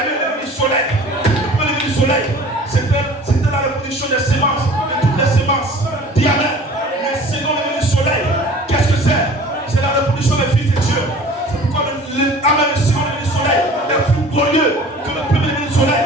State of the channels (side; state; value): both; normal; correlation 0.45